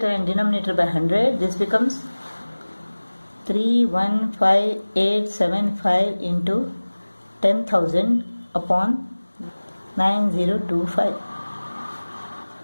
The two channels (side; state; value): both; inverted; correlation -1.00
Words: and denominator by 100, this becomes 315,875 into 10,000 upon 9025.